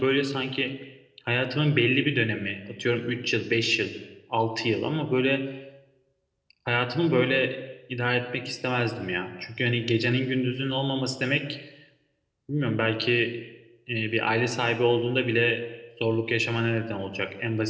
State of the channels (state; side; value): identical; both; correlation 1.00